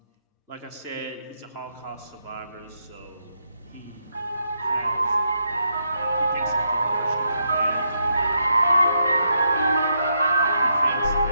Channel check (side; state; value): both; inverted; correlation -0.80